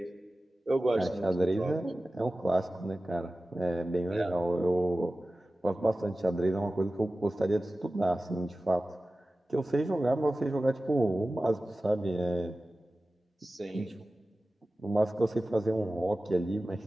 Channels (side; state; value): both; normal; correlation 0.95